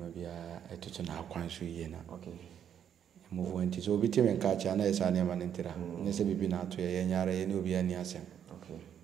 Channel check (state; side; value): quieter; left; 9.0 dB